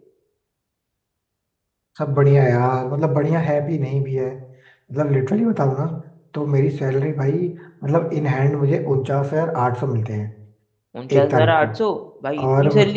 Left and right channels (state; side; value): identical; both; correlation 1.00